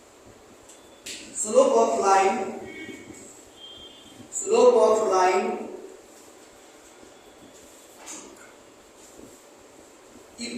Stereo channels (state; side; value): identical; both; correlation 1.00